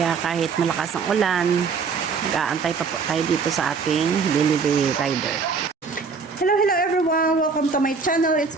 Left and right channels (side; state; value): left; quieter; 5.2 dB